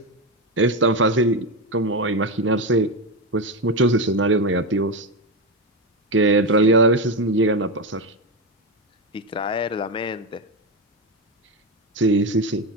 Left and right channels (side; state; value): both; normal; correlation 0.12